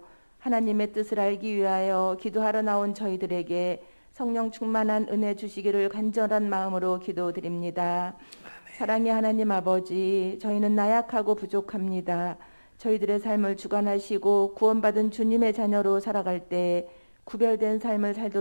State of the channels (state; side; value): inverted; both; correlation -1.00